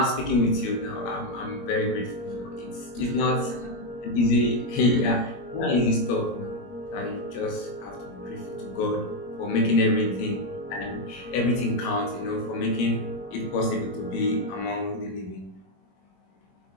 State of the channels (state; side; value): late; right; 21 ms